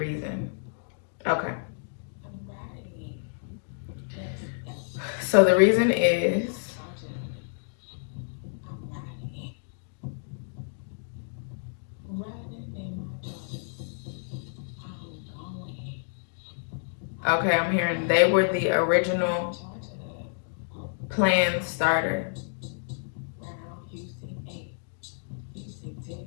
Okay. So the reason is okay, I'm hearing they were the original plan starter.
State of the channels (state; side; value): silent; right; digital silence